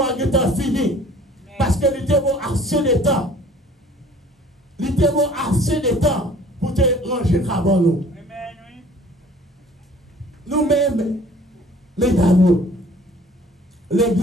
à temps fini. Parce que il était bon assez de temps. Il était bon assez de temps pour te ranger avant nous. Nous-mêmes, les dames,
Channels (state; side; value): normal; both; correlation 0.51